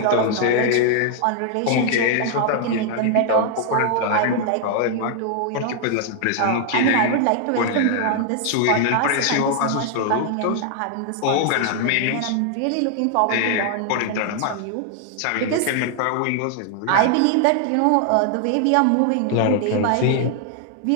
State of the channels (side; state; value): both; different; correlation 0.00